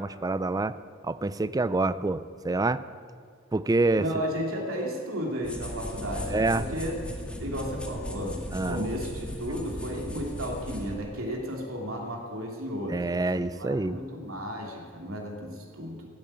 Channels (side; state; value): both; normal; correlation 0.54